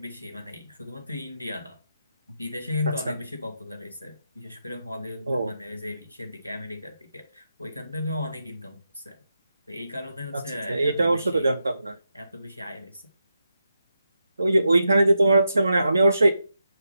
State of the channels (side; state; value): both; inverted; correlation -0.86